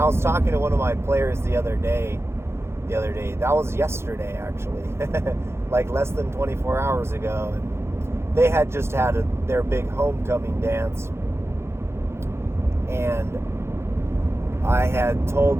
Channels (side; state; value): left; late; 0.12 ms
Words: was talking to one of my players the other day, the other day. That was yesterday, actually. Like less than 24 hours ago. And they had just had their big homecoming dance. And I had